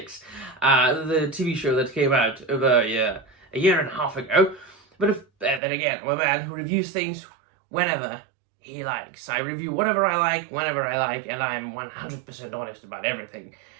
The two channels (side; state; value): left; drops out; at 5.6 s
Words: the TV show that came out over a year and a half ago. But then again, I'm a man who reviews things whenever he likes. I review whatever I like, whenever I like, and I'm 100% honest about everything.